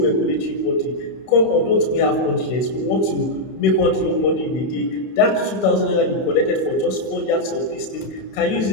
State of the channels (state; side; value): late; right; 32 ms